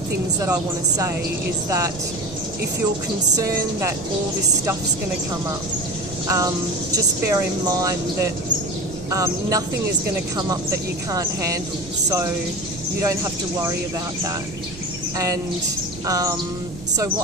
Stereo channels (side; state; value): right; noise; rumble, 15 dB below the sound